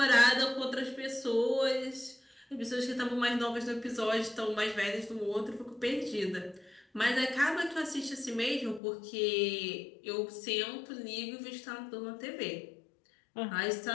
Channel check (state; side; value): drops out; right; at 8.8 s